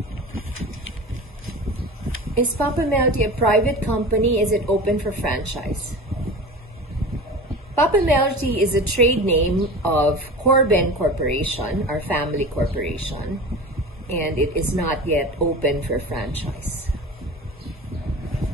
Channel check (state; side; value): normal; both; correlation 0.33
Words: Is Papemelroti a private company? Is it open for franchise? Papemelroti is a trade name of Corben Corporation, our family corporation, and it is not yet open for franchise.